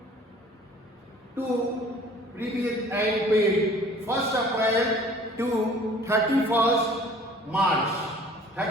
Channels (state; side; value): normal; both; correlation 0.50